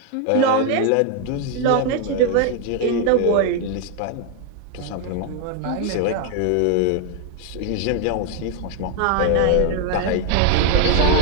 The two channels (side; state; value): both; different; correlation 0.00